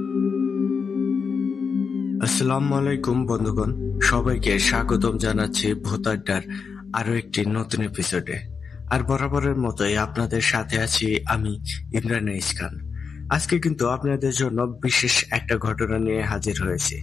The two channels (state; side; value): quieter; right; 5.6 dB